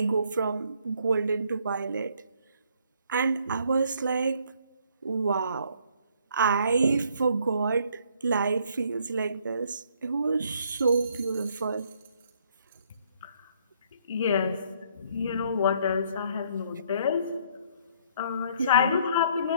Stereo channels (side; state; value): both; inverted; correlation -0.65